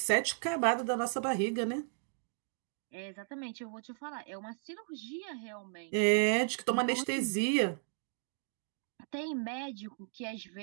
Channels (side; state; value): left; silent; 54 dB below the other